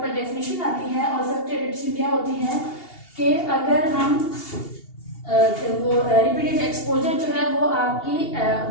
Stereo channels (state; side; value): late; right; 2.8 ms